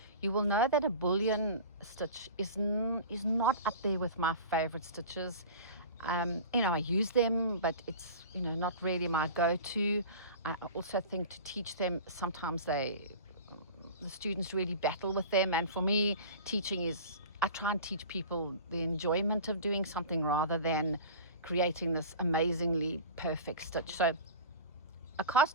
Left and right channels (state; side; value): inverted; both; correlation -0.36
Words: you will know that a bullion stitch is not up there with my favorite stitches. I use them, but it's not really my go-to. I also think to teach them, sometimes the students really battle with them, and for me, teaching is, I try and teach people the enjoyment of doing something rather than creating this amazingly perfect stitch. So a